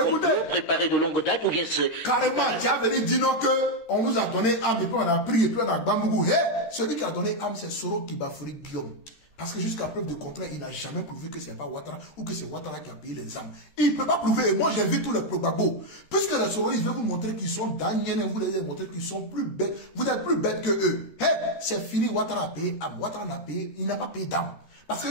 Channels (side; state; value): right; late; 13 ms